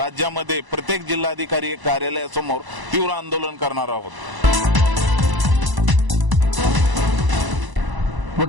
प्रत्येक जिल्हाधिकारी कार्यालयासमोर तीव्र आंदोलन करणार आहोत.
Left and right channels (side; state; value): left; late; 1.0 ms